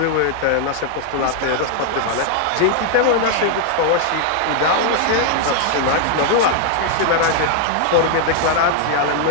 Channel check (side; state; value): both; different; correlation 0.00